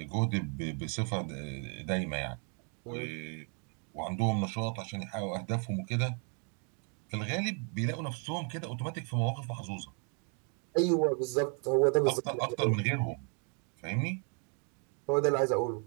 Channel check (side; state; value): left; quieter; 39.5 dB